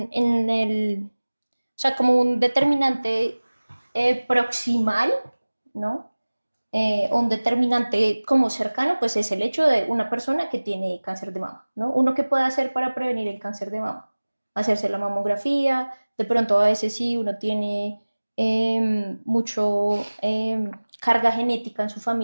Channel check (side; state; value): both; inverted; correlation -1.00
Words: el, o sea, como un determinante proximal, ¿no? O un determinante como cercano, pues es el hecho de una persona que tiene cáncer de mama, ¿no? Uno que puede hacer para prevenir el cáncer de mama, hacerse la mamografía, de pronto a veces sí uno tiene mucho carga genética en su